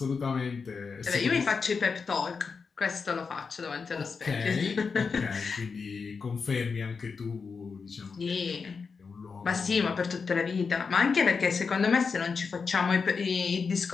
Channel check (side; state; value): right; quieter; 5.2 dB